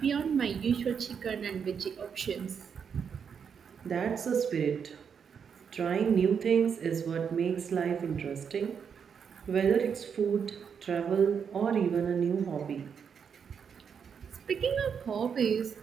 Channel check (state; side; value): quieter; left; 6.9 dB